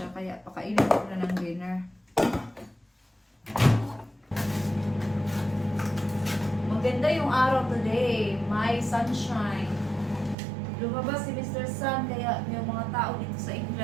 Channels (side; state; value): left; drops out; at 10.4 s